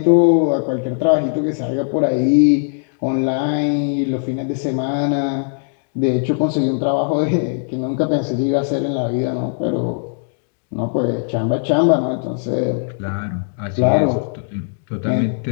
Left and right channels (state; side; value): silent; right; digital silence